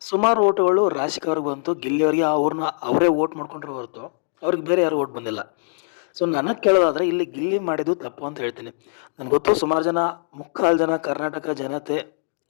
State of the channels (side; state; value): right; silent; digital silence